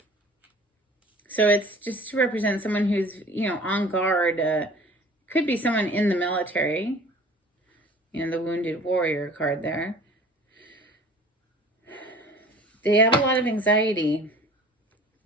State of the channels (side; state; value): both; normal; correlation 0.46